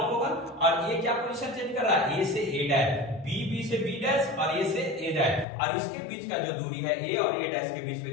होगा, और ये क्या पोजीशन चेंज कर रहा है, A से A डैश, B से B डैश, और A से A डैश, और इसके बीच का जो दूरी है A और A डैश के बीच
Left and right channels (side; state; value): right; drops out; at 5.5 s